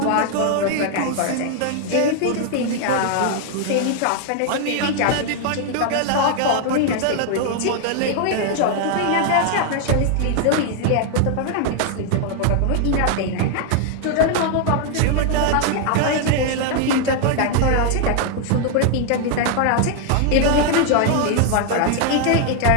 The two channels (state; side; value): different; both; correlation 0.00